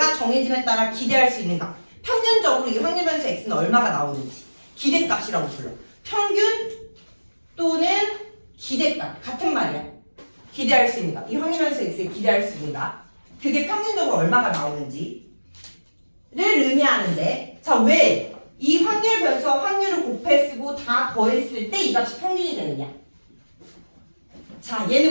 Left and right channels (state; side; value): inverted; both; correlation -1.00